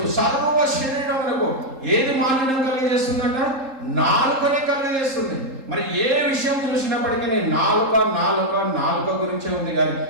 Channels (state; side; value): late; left; 3.8 ms